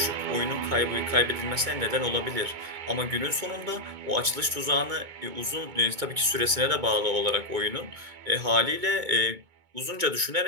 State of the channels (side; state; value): left; late; 2.2 ms